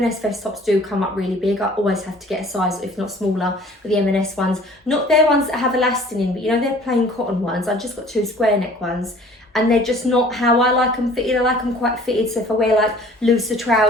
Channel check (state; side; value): normal; both; correlation 0.51